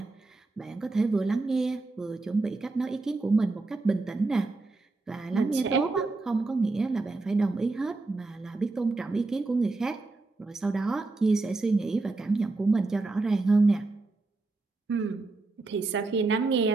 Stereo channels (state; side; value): quieter; left; 3.4 dB